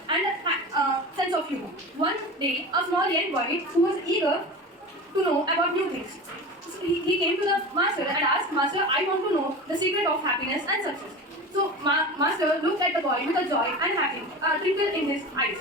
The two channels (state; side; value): normal; both; correlation 0.31